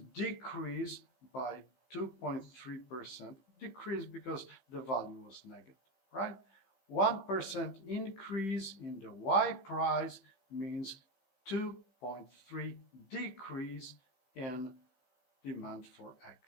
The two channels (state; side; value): late; right; 15 ms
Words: decrease by 2.3%. Decrease because the value was negative, right? 1% increase in the Y price means 2.3 decrease in demand for